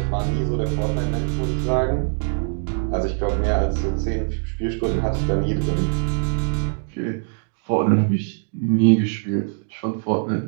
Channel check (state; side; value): silent; left; digital silence